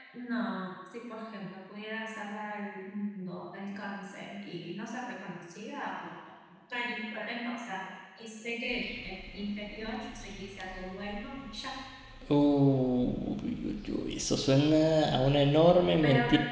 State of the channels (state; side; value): identical; both; correlation 1.00